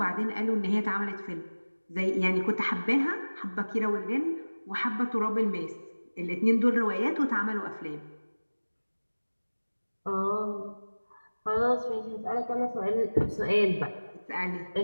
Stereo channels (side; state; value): both; inverted; correlation -1.00